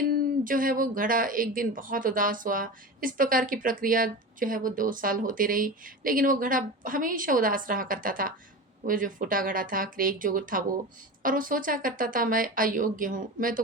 जो है वो घड़ा एक दिन बहुत उदास हुआ। इस प्रकार की प्रक्रिया जो है वो 2 साल होती रही, लेकिन वो घड़ा हमेशा उदास रहा करता था। वो जो फूटा घड़ा था, क्रैक जो था वो, और वो सोचा करता था मैं अयोग्य हूँ, मैं तो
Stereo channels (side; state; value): both; normal; correlation 0.28